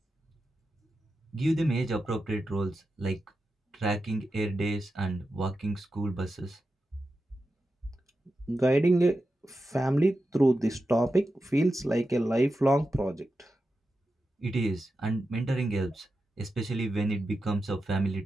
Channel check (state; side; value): normal; both; correlation 0.90